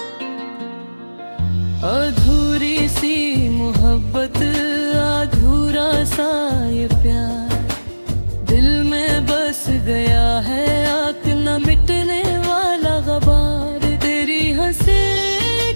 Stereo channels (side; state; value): both; inverted; correlation -1.00